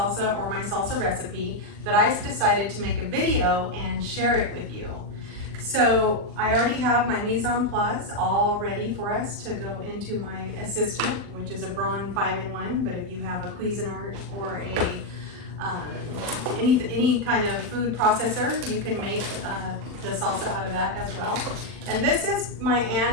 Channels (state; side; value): late; left; 40 ms